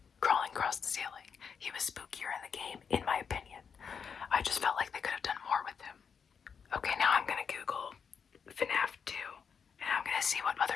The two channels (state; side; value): quieter; right; 6.5 dB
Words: crawling across the ceiling. He was spookier in the game, in my opinion. I just felt like they could have done more with him. Okay, now I'm gonna Google Fnaf 2, and I'm gonna see what